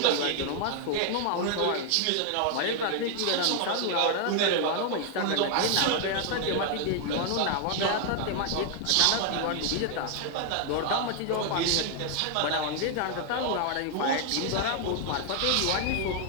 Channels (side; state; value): both; different; correlation 0.00